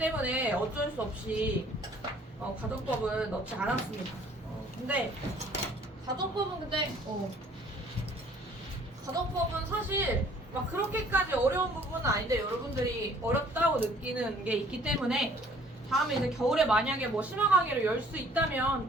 어쩔 수 없이 가정법은 넣지 않았습니다. 근데 가정법은 가정법은 사실 막 그렇게까지 어려운 부분은 아닌데 여러분들이 어렵다고 느끼는 게 있기 때문에 다음에 이제 겨울에 만약에 뭐 심화 강의를 열 수 있다면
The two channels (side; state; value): both; normal; correlation 0.57